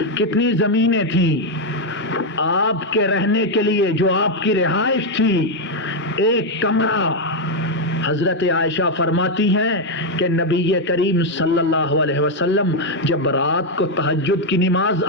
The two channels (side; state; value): both; normal; correlation 0.02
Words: کتنی زمینیں تھیں۔ آپ کے رہنے کے لیے جو آپ کی رہائش تھی، ایک کمرہ، حضرت عائشہ فرماتی ہیں کہ نبی کریم صلی اللہ علیہ وسلم جب رات کو تہجد کی نماز